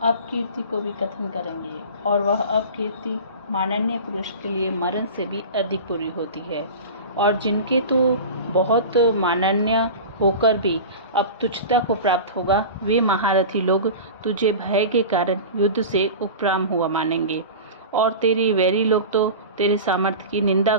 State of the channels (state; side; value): inverted; both; correlation -0.32